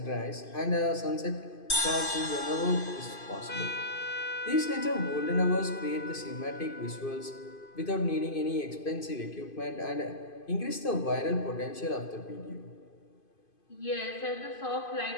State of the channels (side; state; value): right; late; 2.5 ms